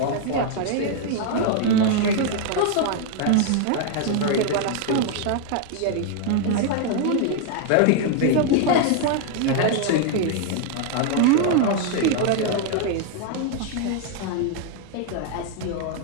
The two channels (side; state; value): both; different; correlation 0.00